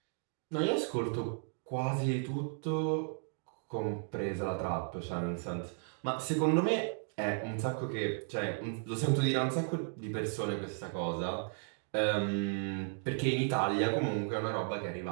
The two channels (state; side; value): silent; left; 55 dB below the other